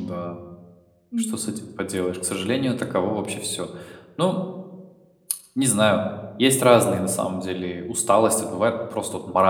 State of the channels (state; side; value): identical; both; correlation 1.00